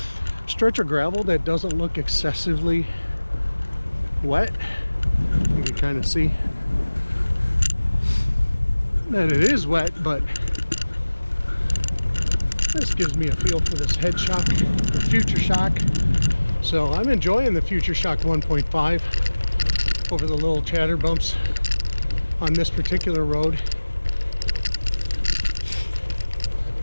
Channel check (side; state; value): both; inverted; correlation -1.00